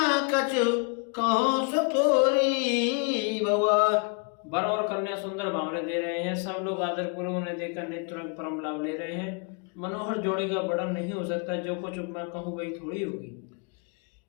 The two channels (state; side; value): quieter; right; 35.8 dB